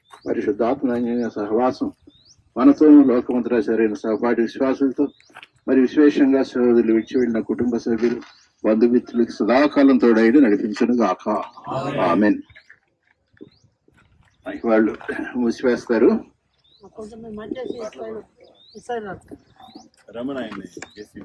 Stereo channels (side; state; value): both; identical; correlation 1.00